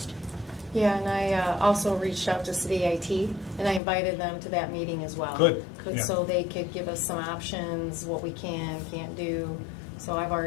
Yeah, and I also reached out to City IT, and I invited them to that meeting as well. Good, yeah. So they could give us some options, what we can, can't do. So I've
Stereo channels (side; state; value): right; drops out; at 3.8 s